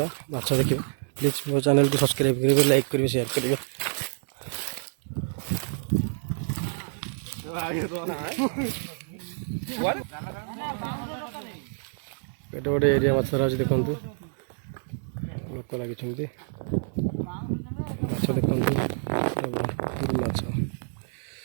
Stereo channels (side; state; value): left; silent; digital silence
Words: माछ देखा। प्लीज मो चैनल को सब्सक्राइब करेंगे, लाइक करेंगे, शेयर करेंगे। एटे गोटे एरिया माछ धरा देखु लोक लगी माछ देखु भरपूर माछ